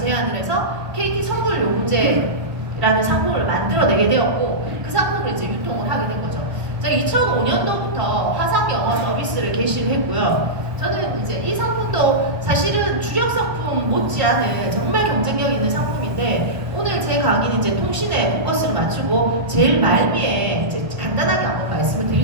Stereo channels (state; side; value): late; left; 1.3 ms